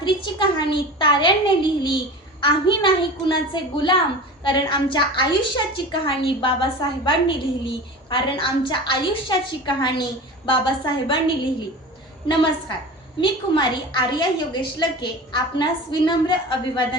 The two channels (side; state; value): both; normal; correlation 0.34